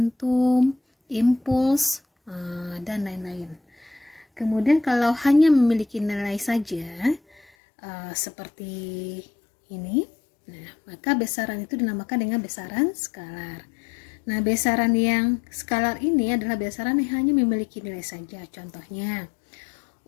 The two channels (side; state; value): right; drops out; at 7.5 s